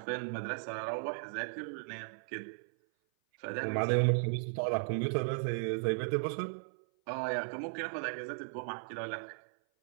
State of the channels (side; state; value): left; silent; 54 dB below the other